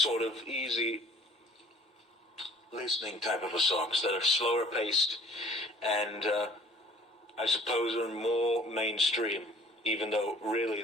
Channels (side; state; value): both; normal; correlation 0.53